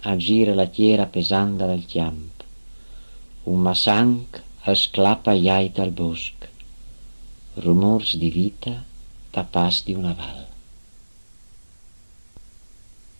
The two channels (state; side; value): inverted; both; correlation -1.00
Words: la tiera pesanda dal chiamp. Un massanc esclappa iait al bosc. Rumors di vita tapas di una val.